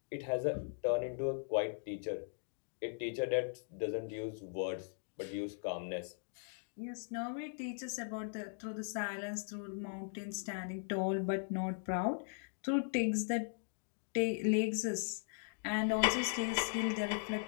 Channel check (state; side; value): silent; right; digital silence